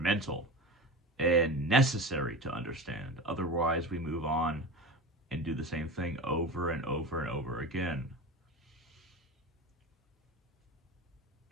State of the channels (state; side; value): normal; both; correlation 0.30